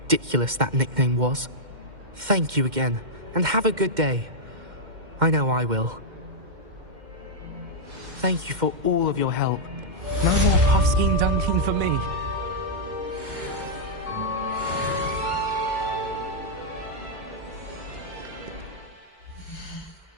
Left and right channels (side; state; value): left; late; 2.1 ms